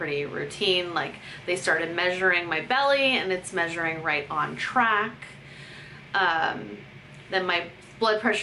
routine. Like they started measuring my belly, and it's measuring right on track. Then my blood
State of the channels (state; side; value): identical; both; correlation 1.00